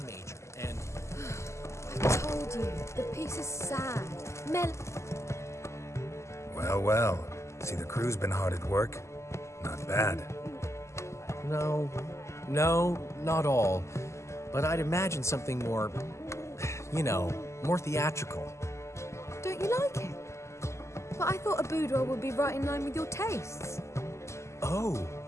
major, and I told you, the piece is sad. Well, well. See, the crew's been hard at work. Not bad. no, not all. But I'd imagine something more, more theatrical. Don't you like it? But I thought a boudoir would be right in line with your tastes. Oh,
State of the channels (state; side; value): late; right; 0.13 ms